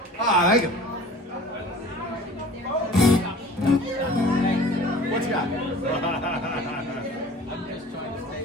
Ah, thank you. What you got? I'm just trying to stay.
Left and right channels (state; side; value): normal; both; correlation 0.44